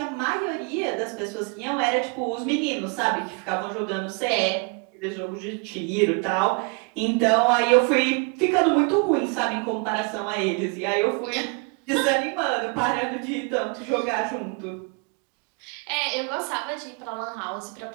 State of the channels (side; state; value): left; quieter; 34.5 dB